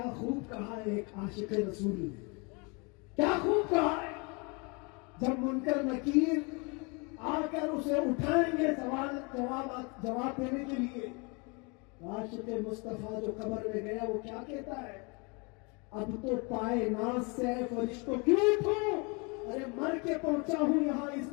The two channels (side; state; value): right; quieter; 30.8 dB